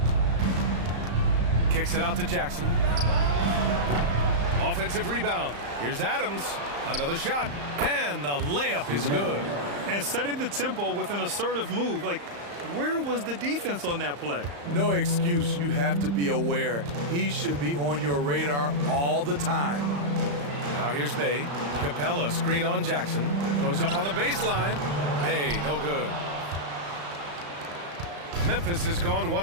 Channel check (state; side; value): late; left; 35 ms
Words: Kicks it out to Jackson. Offensive rebound. Here's Adams. Another shot. And the layup is good. And setting the tempo with an assertive move. Like, where was the defense on that play? No excuse. You have to be aware. He should be on your radar all the time. Now here's Bay. Capella, screen on Jackson. Goes up on the baseline. Bay, no good. Memphis has gone